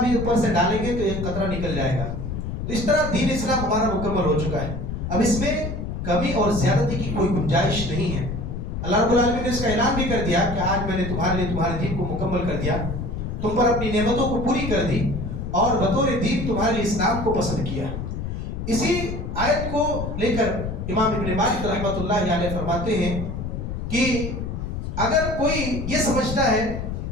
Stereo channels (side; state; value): left; noise; rumble, 5 dB below the sound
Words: بھی اوپر سے ڈالیں گے تو ایک قطرہ نکل جائے گا۔ تو اس طرح دین اسلام ہمارا مکمل ہو چکا ہے، اب اس میں کمی اور زیادتی کی کوئی گنجائش نہیں ہے۔ اللہ رب العالمین نے اس کا اعلان بھی کر دیا کہ آج میں نے تمہارے لیے تمہارے دین کو مکمل کر دیا، تم پر اپنی نعمتوں کو پوری کر دی اور بطور دین تمہارے لیے اسلام کو پسند کیا۔ اسی آیت کو لے کر امام ابن مالک رحمۃ اللہ علیہ فرماتے ہیں کہ اگر کوئی یہ سمجھتا ہے